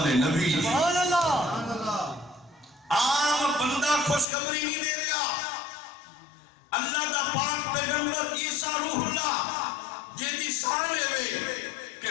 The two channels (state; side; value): drops out; right; at 4.2 s